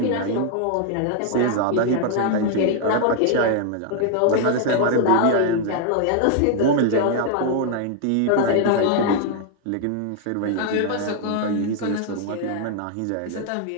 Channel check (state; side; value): different; both; correlation 0.00